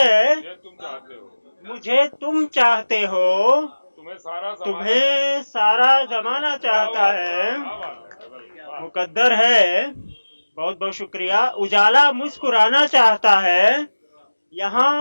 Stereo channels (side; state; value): both; inverted; correlation -1.00